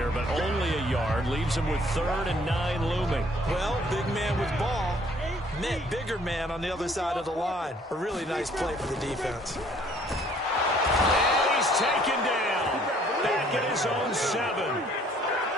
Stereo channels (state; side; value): normal; both; correlation 0.60